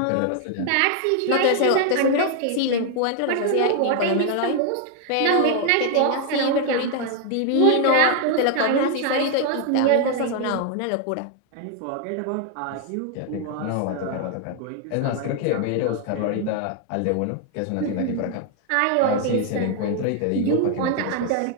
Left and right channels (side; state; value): both; different; correlation 0.00